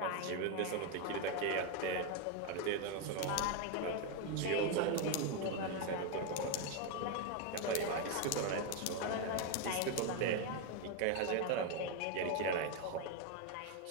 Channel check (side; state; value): both; different; correlation 0.02